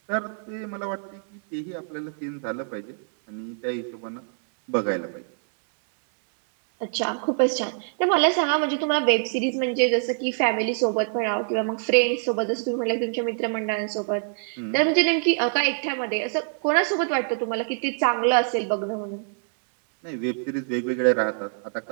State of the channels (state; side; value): silent; left; 62 dB below the other